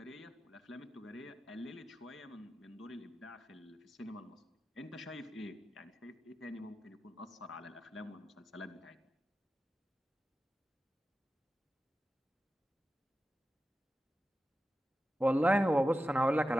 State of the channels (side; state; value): both; normal; correlation 0.92